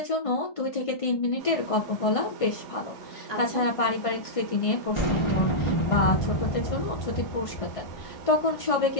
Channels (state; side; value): late; right; 1.5 ms